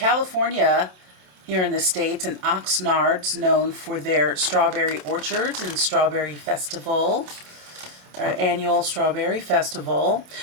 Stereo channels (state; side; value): late; left; 27 ms